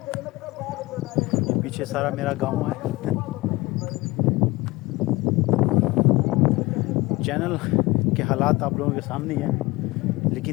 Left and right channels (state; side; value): quieter; right; 21.0 dB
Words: یہ پیچھے سارا میرا گاؤں ہے. چینل کے حالات آپ لوگوں کے سامنے ہی ہیں،